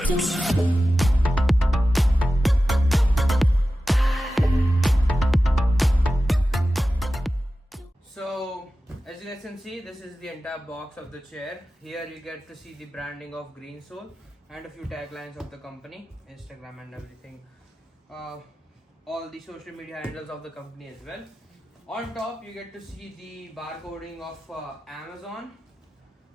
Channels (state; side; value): normal; both; correlation 0.94